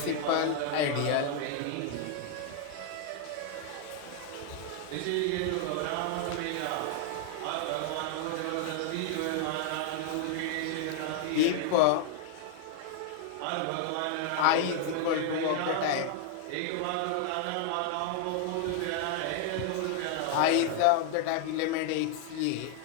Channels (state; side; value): different; both; correlation 0.00